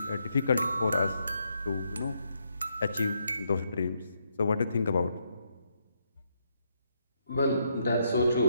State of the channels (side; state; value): both; inverted; correlation -0.77